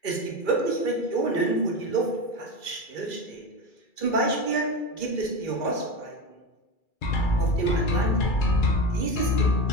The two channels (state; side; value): late; right; 2.3 ms